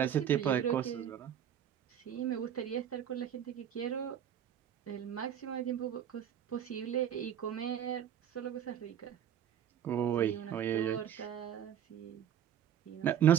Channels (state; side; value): quieter; left; 9.6 dB